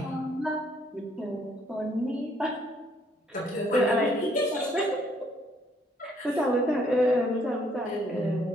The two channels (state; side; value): normal; both; correlation 0.67